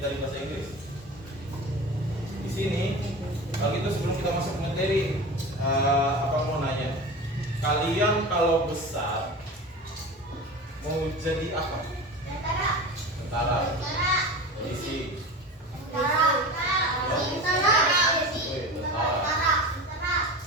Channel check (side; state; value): both; normal; correlation 0.31